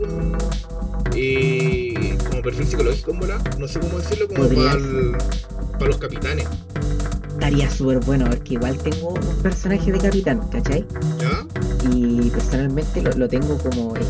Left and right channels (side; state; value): both; identical; correlation 1.00